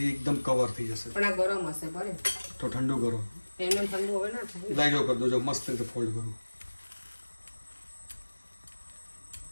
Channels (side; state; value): both; inverted; correlation -1.00